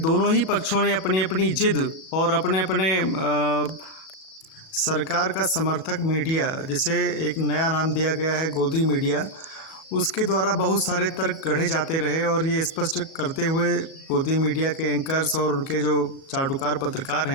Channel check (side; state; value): right; late; 36 ms